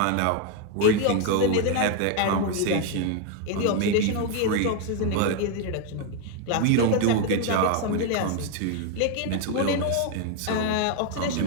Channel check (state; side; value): different; both; correlation 0.01